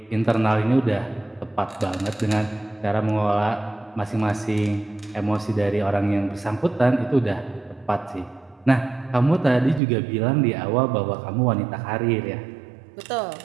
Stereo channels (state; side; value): drops out; left; at 9.8 s